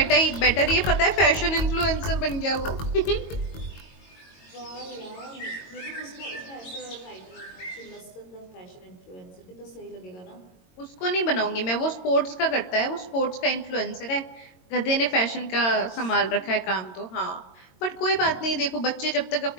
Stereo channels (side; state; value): right; late; 22 ms